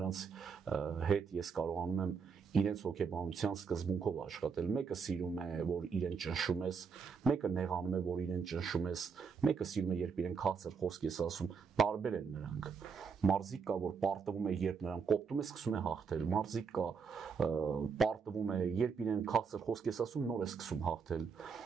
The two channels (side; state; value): left; quieter; 5.8 dB